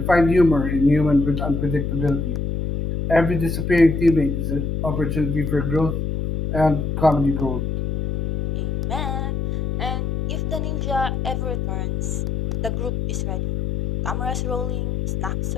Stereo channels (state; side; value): noise; left; hum, 1 dB below the sound